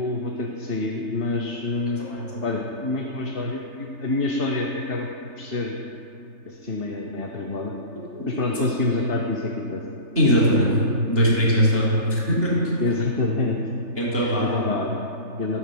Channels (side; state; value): left; late; 3.3 ms